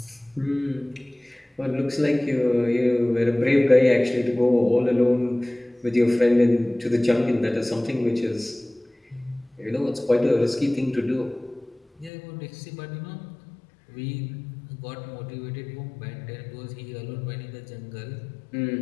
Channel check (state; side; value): drops out; right; at 12.1 s